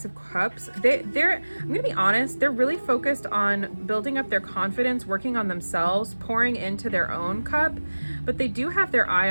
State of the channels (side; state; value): both; inverted; correlation -1.00